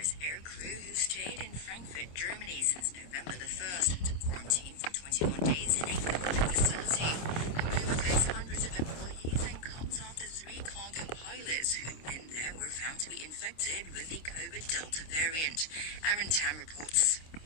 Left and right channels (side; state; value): right; late; 26 ms